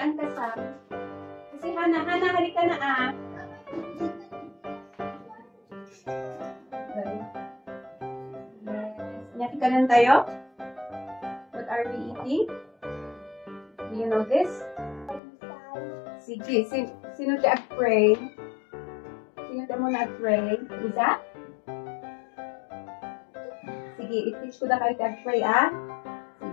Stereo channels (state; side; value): drops out; right; at 15.2 s